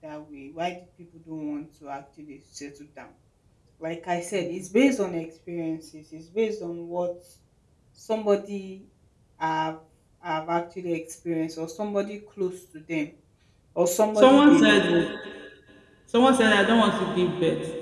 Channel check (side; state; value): both; identical; correlation 1.00